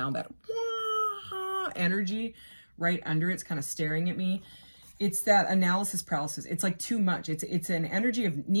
that energy right under it's kind of staring at me. It's that analysis paralysis. It's like too much. It's an energy of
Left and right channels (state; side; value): inverted; both; correlation -1.00